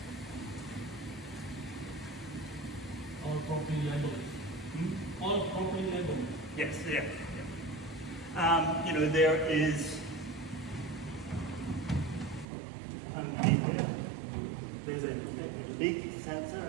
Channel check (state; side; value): drops out; left; at 12.5 s